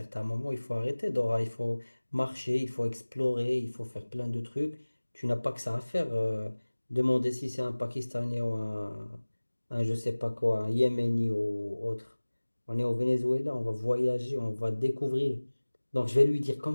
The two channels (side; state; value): both; inverted; correlation -1.00